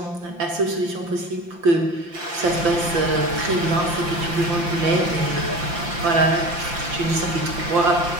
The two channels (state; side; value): late; left; 5.8 ms